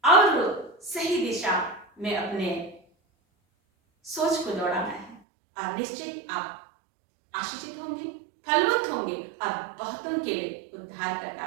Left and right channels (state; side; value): drops out; left; at 5.2 s